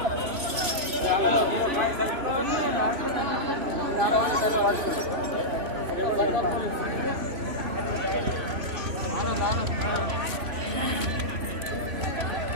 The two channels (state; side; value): late; left; 3.0 ms